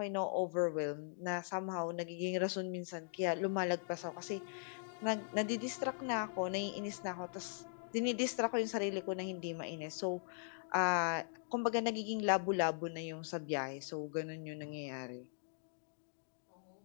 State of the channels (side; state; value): right; silent; digital silence